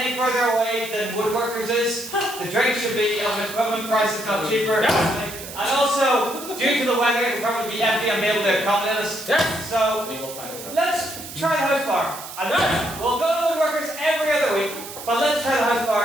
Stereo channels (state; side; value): noise; right; hiss, 12 dB below the sound